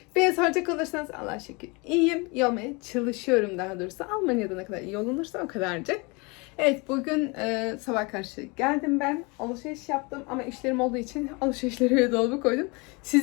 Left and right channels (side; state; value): right; quieter; 28.3 dB